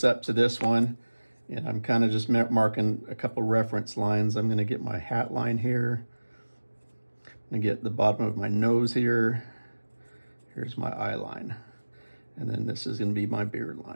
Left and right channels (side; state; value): both; inverted; correlation -1.00